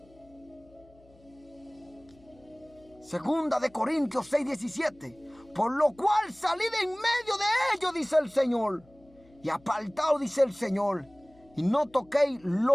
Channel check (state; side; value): noise; left; hum, 28 dB below the sound